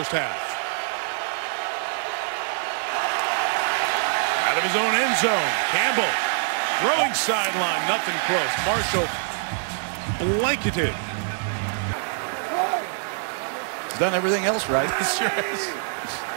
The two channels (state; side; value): silent; left; digital silence